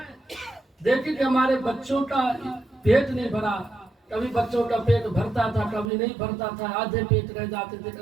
देखी कि हमारे बच्चों का पेट नहीं भरा, कभी बच्चों का पेट भरता था, कभी नहीं भरता था, आधे पेट रह जाते थे,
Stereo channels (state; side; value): drops out; left; at 5.9 s